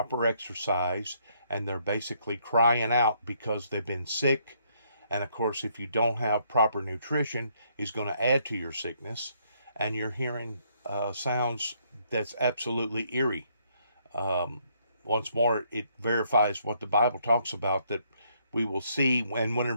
exercise, and they're basically crying out because they've been sick. And of course, if you don't have proper nutrition, it's going to add to your sickness. And you're hearing sounds that's absolutely eerie. Once more, it verifies what the Bible talks about, that we will see. And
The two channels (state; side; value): inverted; both; correlation -0.70